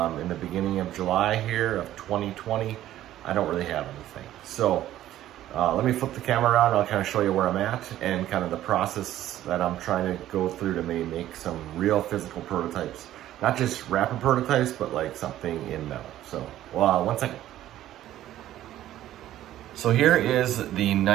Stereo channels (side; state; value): left; quieter; 13.2 dB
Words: the beginning of July here of 2020, I don't really have anything. So let me flip the camera around. I'll kind of show you where I'm at and kind of the process that I'm trying to go through to maybe make some real physical prototypes. Not just rapid prototypes, but like something in metal. So, one second. So here is the